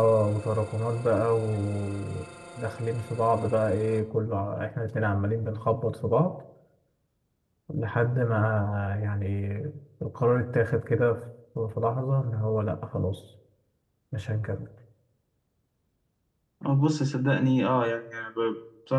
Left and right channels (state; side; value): identical; both; correlation 1.00